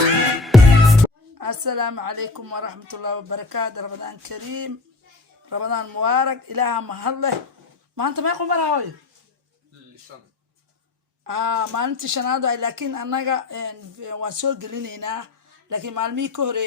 عليكم ورحمة الله وبركاته. رمضان كريم، رمضان مبارك. إلها مهله ما أنت ما يقول براوي ما أنت شنادو، لكن أنا وسوق لنا، لكن معلمي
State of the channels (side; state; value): right; quieter; 3.3 dB